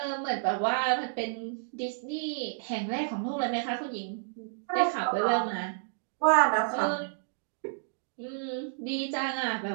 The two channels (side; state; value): left; silent; digital silence